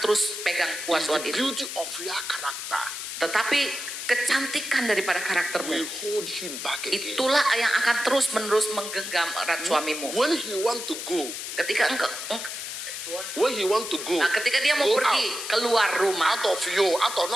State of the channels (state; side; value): noise; left; hiss, 7 dB below the sound